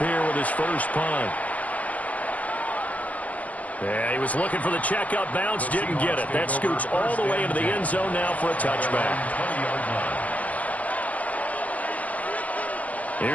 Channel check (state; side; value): late; right; 0.075 ms